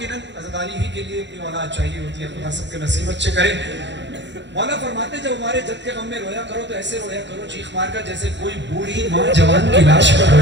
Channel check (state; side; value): late; left; 0.52 ms